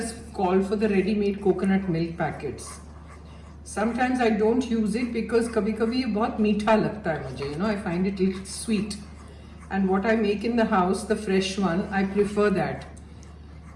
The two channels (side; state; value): both; identical; correlation 1.00